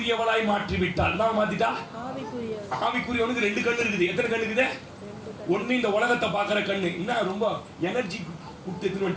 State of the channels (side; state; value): both; identical; correlation 1.00